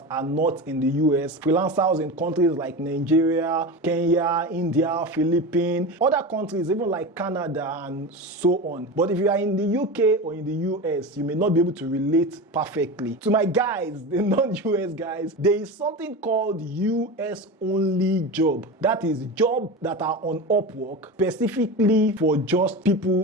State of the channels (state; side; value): normal; both; correlation 0.25